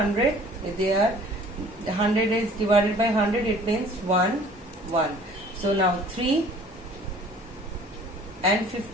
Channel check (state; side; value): normal; both; correlation 0.51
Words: They are 100 is divided by 100. It means 1 1. So now 3 and